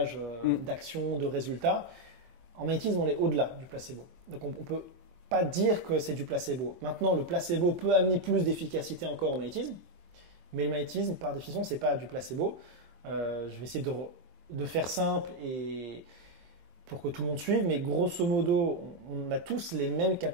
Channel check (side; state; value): left; late; 23 ms